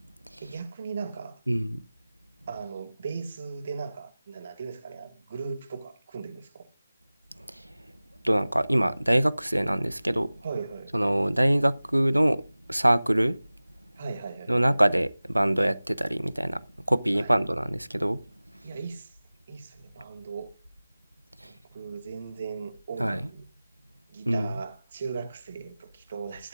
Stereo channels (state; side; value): inverted; both; correlation -0.98